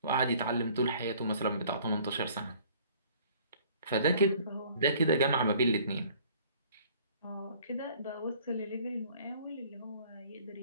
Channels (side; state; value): both; inverted; correlation -0.55